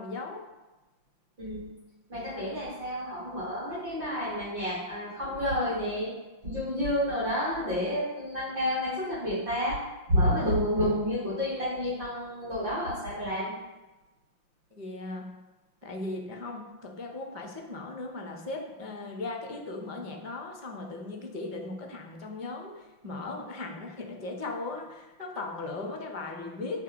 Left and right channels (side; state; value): left; late; 5.8 ms